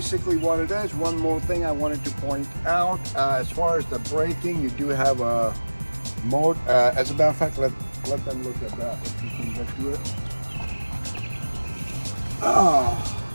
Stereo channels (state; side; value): inverted; both; correlation -1.00